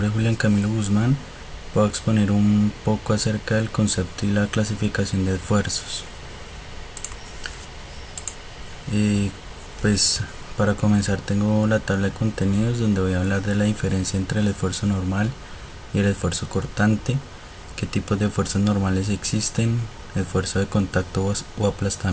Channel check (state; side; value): identical; both; correlation 1.00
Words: es Julián Camilo Guzmán. Voy a exponer un poco acerca del concepto y la clasificación de esfuerzos. Y pues para comenzar tengo la tabla de contenidos donde voy a hablar de la diferencia entre el esfuerzo normal y el esfuerzo cortante, qué tipos de esfuerzos normales existen, esfuerzo de contacto o